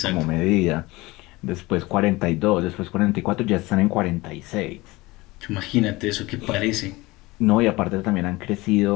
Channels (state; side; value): quieter; right; 21.4 dB